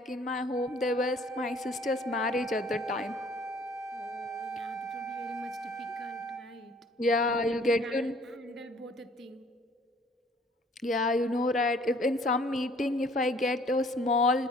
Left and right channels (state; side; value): normal; both; correlation 0.57